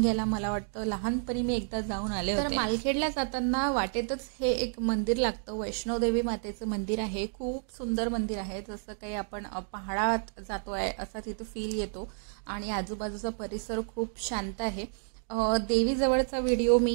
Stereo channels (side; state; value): left; silent; digital silence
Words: मला वाटतं लहानपणी मी एकदा जाऊन आले होते. तर मालखेडला जाताना वाटेतच हे एक मंदिर लागतं, वैष्णोदेवी मातेचं मंदिर आहे. खूप सुंदर मंदिर आहे, जसं काही आपण पहाडात जातोय असा तिथं फील येतो आणि आजूबाजूचा परिसर खूप शांत आहे. देवीजवळचा व्हिडिओ मी